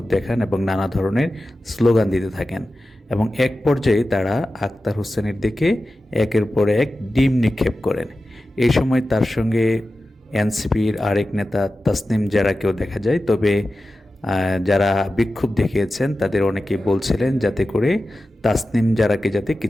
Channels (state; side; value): normal; both; correlation 0.93